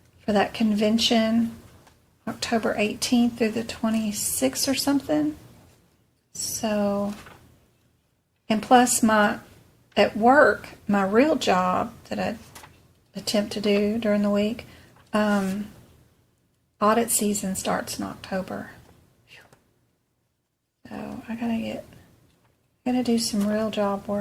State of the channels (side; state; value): both; identical; correlation 1.00